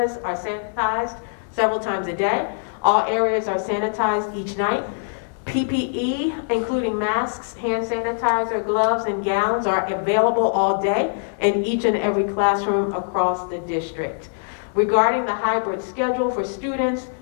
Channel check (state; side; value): silent; right; 64 dB below the other